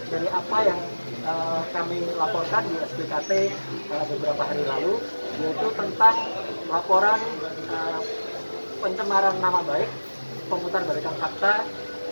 dari apa yang kami laporkan di SPKT beberapa hari lalu, yaitu tentang laporan pencemaran nama baik, pemutarbalikan fakta,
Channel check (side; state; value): both; inverted; correlation -1.00